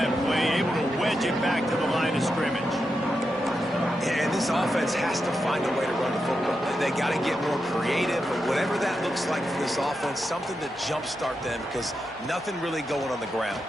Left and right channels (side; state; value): both; normal; correlation 0.87